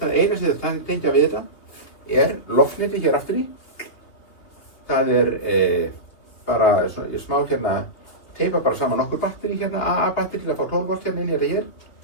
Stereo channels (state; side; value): late; right; 3.0 ms